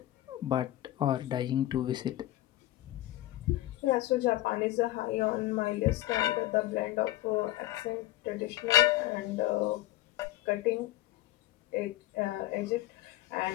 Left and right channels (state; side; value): quieter; right; 15.7 dB